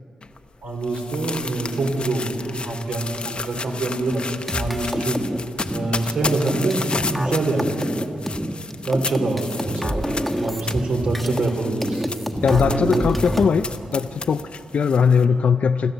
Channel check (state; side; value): normal; both; correlation 0.79